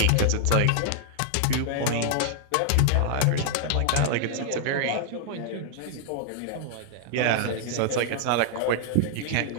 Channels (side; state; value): both; different; correlation 0.00